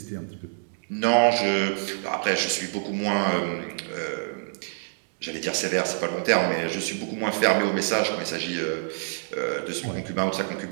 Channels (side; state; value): left; silent; digital silence